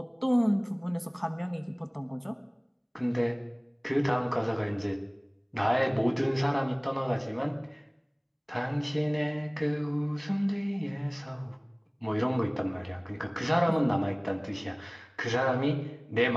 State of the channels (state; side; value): identical; both; correlation 1.00